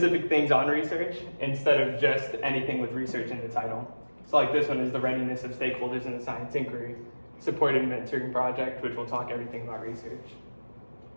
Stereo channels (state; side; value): inverted; both; correlation -1.00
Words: things on research instead of just anything with research in the title. So like this one is the readiness of stakeholders in the science inquiry, supported mentoring project, which will talk everything about research.